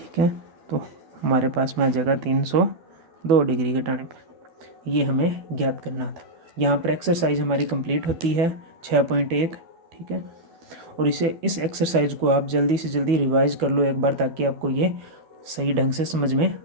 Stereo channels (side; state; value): left; late; 12 ms